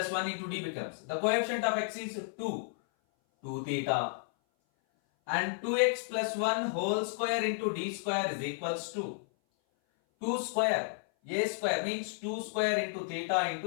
1 into d becomes, the coefficient of x is 2 theta, and 2x plus 1 whole square into d square is equals to 2 square, a square means 2 square into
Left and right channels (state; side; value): silent; right; 56 dB below the other